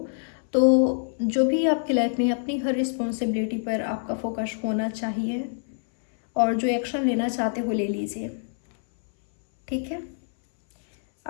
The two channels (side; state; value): right; silent; 61 dB below the other